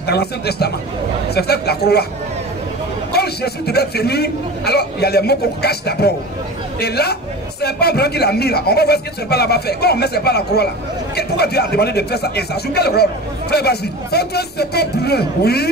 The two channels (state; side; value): normal; both; correlation 0.33